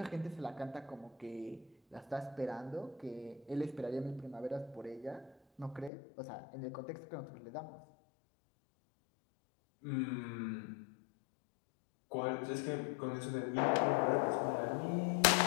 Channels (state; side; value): drops out; right; at 5.9 s